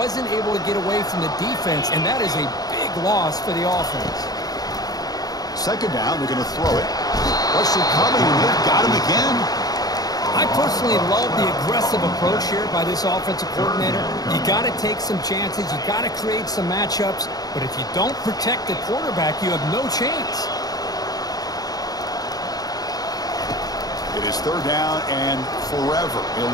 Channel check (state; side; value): late; right; 0.18 ms